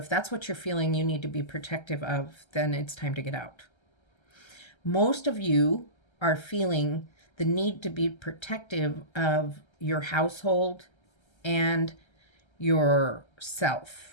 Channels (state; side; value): late; right; 1.3 ms